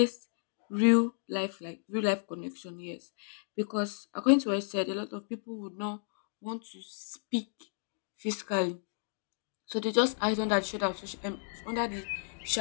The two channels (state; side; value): silent; right; digital silence